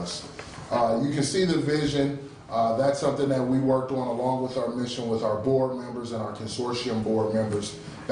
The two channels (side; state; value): both; identical; correlation 1.00